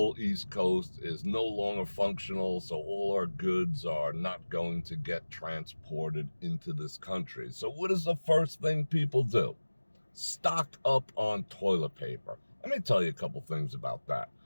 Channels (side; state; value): both; inverted; correlation -1.00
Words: East Coast is no longer functional, so all our goods are not going to get transported into this country. So what is the first thing people do? stock up on toilet paper. Let me tell you a couple things about that.